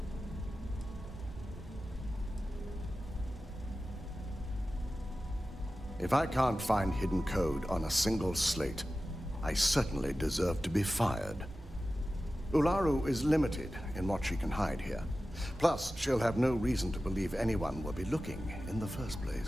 If I can't find hidden code on a single slate, I certainly deserve to be fired. Ularu is limited in what she can hide here. Plus, she'll have no reason to believe anyone will be looking in the first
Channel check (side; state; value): both; normal; correlation 0.94